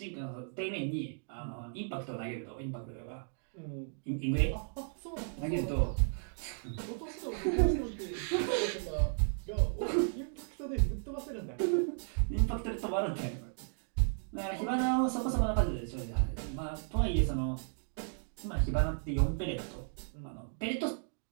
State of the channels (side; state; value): left; silent; 55 dB below the other